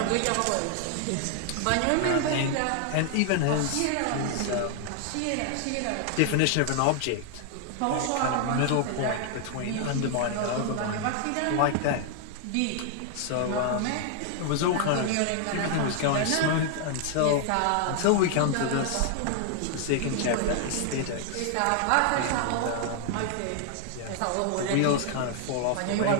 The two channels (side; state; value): both; different; correlation 0.00